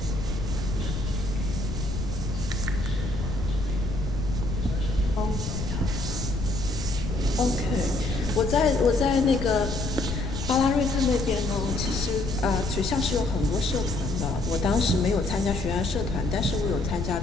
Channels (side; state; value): left; noise; rumble, 4 dB below the sound